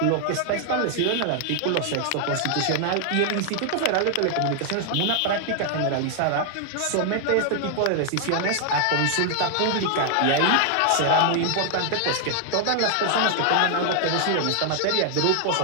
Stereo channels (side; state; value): both; different; correlation 0.00